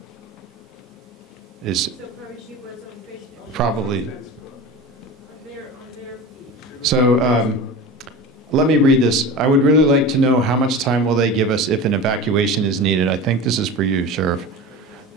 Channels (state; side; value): normal; both; correlation 0.31